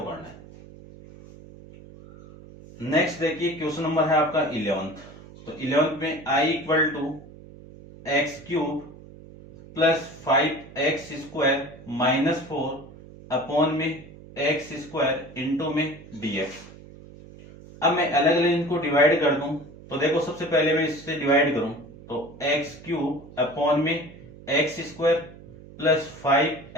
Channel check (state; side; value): noise; right; hum, 19 dB below the sound